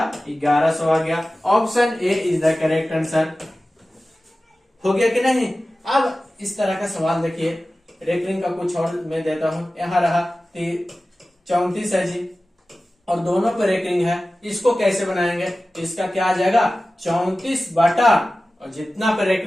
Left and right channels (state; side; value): normal; both; correlation 0.96